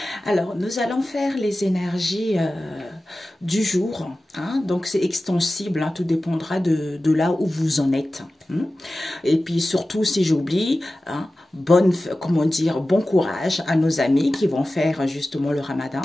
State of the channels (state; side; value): normal; both; correlation 0.95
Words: Alors nous allons faire les énergies du jour, hein? Donc c'est extensible, hein, tout dépendra de là où vous en êtes. Hein? Et puis surtout si j'oublie, hein, comment dire, bon courage à nos amis qui vont faire justement le ramadan